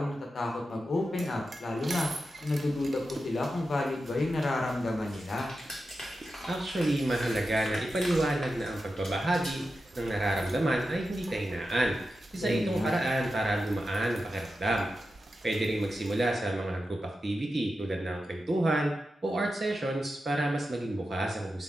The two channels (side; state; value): both; normal; correlation 0.90